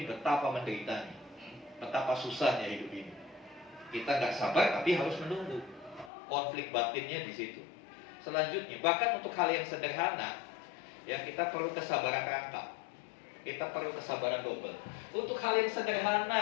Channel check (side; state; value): right; drops out; at 6.1 s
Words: betapa menderitanya, betapa susahnya hidup ini. Kita nggak sabar tapi harus menunggu. Konflik batinnya di situ. Selanjutnya, bahkan untuk hal yang sederhana, ya kita perlu kesabaran rangkap. Kita perlu kesabaran double. Untuk hal yang